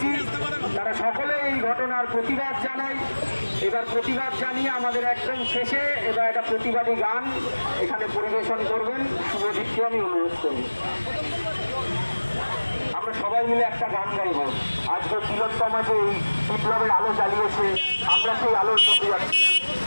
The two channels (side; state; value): both; inverted; correlation -1.00